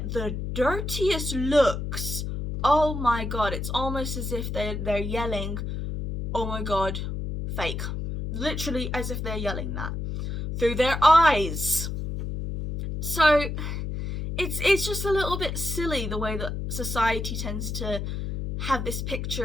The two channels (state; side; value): noise; left; hum, 4 dB below the sound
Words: the dirtiest looks. Oh my god, it's almost as if they're yelling, oh my god, fake. Literally as if they're yelling that through their eyes. So it's just a little bit silly the way that society tends to have this